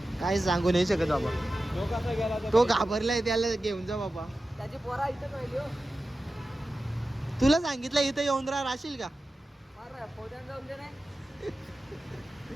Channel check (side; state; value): both; normal; correlation 0.94